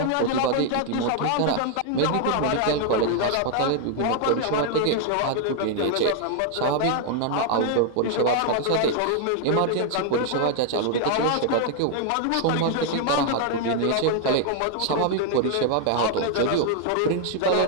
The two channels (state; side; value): different; both; correlation 0.00